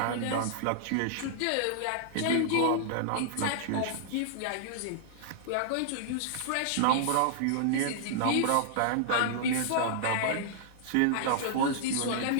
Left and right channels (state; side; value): different; both; correlation -0.01